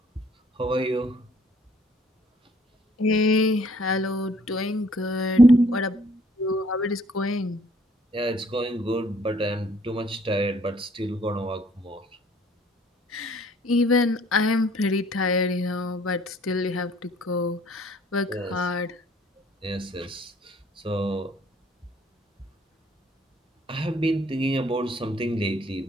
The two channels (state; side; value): normal; both; correlation 0.60